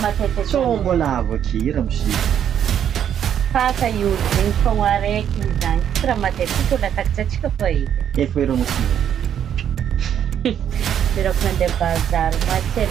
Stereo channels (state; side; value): quieter; left; 9.3 dB